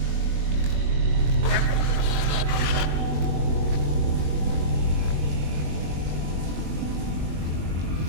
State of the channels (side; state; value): left; late; 21 ms